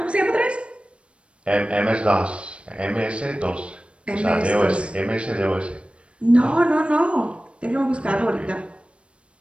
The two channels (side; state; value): left; late; 0.059 ms